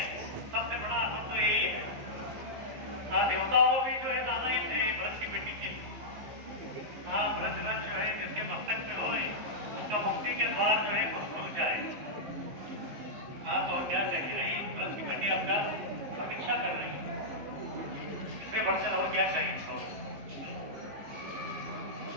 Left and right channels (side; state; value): left; late; 15 ms